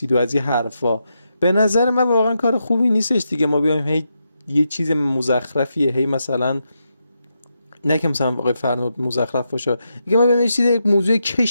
و از این حرفا. به نظر من واقعا کار خوبی نیستش دیگه. ما بیایم هی یه چیز مزخرفیه هی مثلا، نه که مثلا آقای فرنود مزخرف باشه، دیگه ما بیایم یه چیز یک موضوع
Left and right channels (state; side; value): inverted; both; correlation -0.84